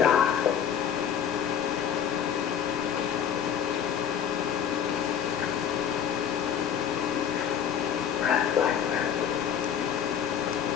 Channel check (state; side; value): quieter; right; 8.5 dB